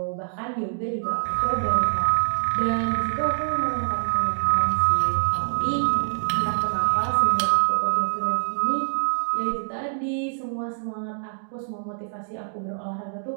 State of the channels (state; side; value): silent; left; digital silence